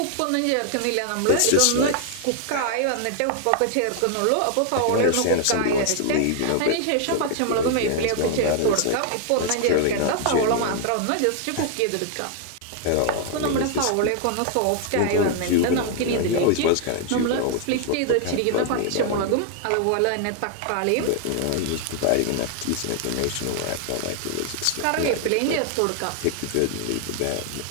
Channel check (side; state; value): both; different; correlation 0.00